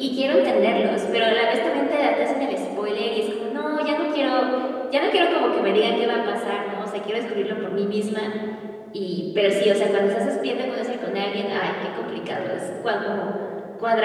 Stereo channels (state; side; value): identical; both; correlation 1.00